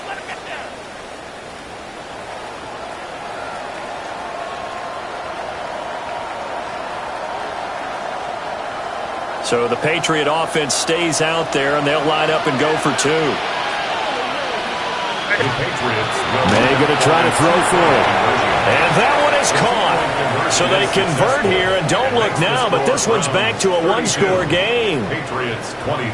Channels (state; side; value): identical; both; correlation 1.00